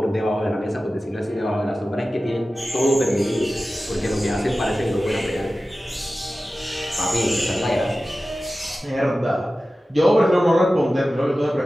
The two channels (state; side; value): normal; both; correlation 0.95